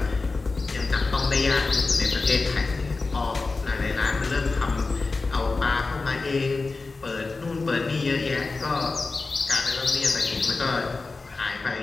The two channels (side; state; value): right; quieter; 3.8 dB